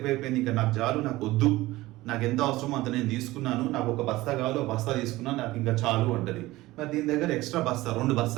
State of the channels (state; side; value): quieter; left; 18.3 dB